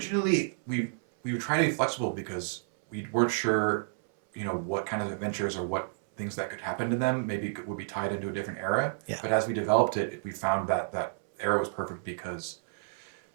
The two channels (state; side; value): silent; left; 58 dB below the other